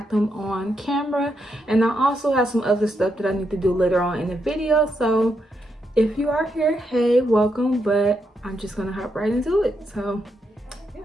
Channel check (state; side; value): normal; both; correlation 0.81